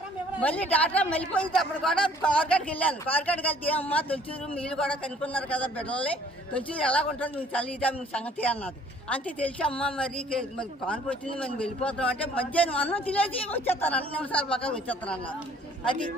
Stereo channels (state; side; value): normal; both; correlation 0.57